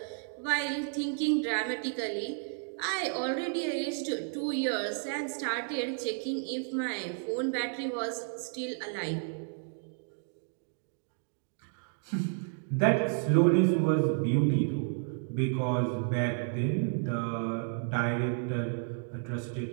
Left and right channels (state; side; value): silent; left; 56 dB below the other